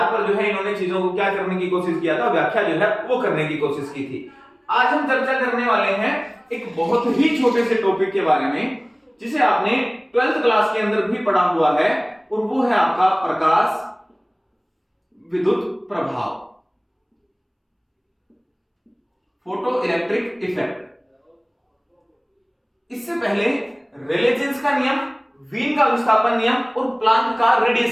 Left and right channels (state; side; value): identical; both; correlation 1.00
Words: पर जो है इन्होंने चीजों को क्या करने की कोशिश किया था, व्याख्या जो है वो करने की कोशिश की थी। आज हम चर्चा करने वाले हैं एक बहुत ही छोटे से टॉपिक के बारे में, जिसे आपने 12th क्लास के अंदर भी पढ़ा हुआ है, और वो है आपका प्रकाश विद्युत प्रभाव, फोटो इलेक्ट्रिक इफेक्ट। इससे पहले रेले जीन्स का नियम, वीन का विस्थापन नियम और प्लांक का